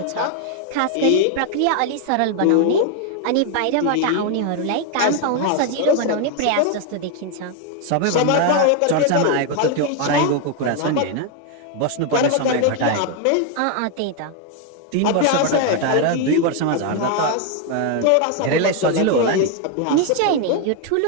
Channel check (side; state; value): both; different; correlation 0.01